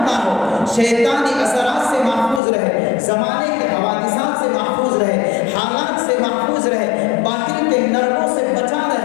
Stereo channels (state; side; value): drops out; right; at 2.4 s